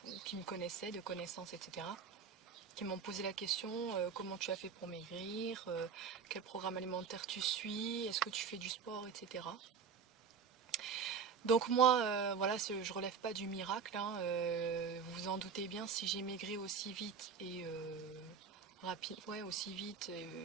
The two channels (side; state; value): left; quieter; 6.2 dB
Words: qui me connaissaient, de connaissances, etc. Qui m'ont posé la question, comment tu as fait pour maigrir, quel programme alimentaire tu suis, est-ce que tu fais du sport, etc. Donc moi, voilà, je relève pas du miracle, hein, vous vous en doutez bien, si j'ai maigri aussi vite et rapide, ouais, aussi vite,